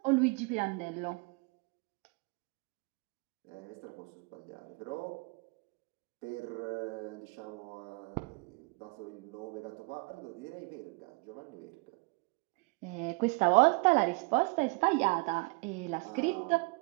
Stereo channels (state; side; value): quieter; left; 29.2 dB